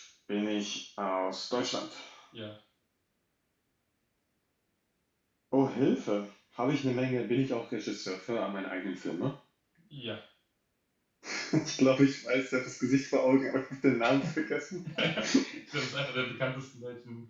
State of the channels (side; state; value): both; identical; correlation 1.00